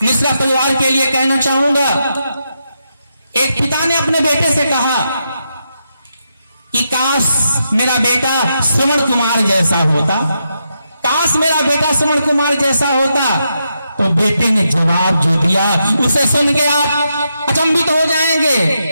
मिश्रा परिवार के लिए कहना चाहूंगा, एक पिता ने अपने बेटे से कहा कि काश मेरा बेटा श्रवण कुमार जैसा होता, काश मेरा बेटा श्रवण कुमार जैसा होता। तो बेटे ने जवाब जो दिया उसे सुन के आप अचंभित हो जाएंगे।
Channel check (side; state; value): both; inverted; correlation -0.83